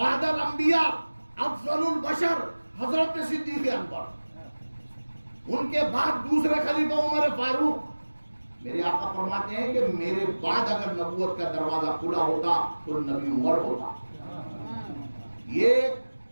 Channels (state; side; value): inverted; both; correlation -1.00